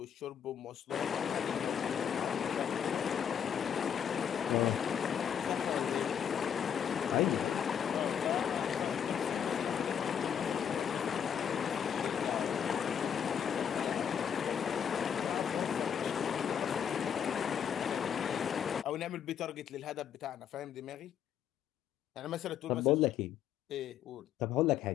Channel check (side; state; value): right; quieter; 8.4 dB